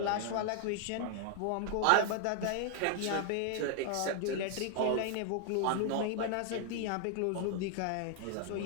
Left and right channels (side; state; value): both; different; correlation 0.00